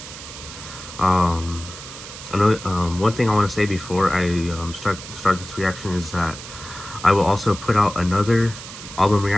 One thing I want to say before I start this reaction is that I will also put out another album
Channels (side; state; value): right; noise; hiss, 13 dB below the sound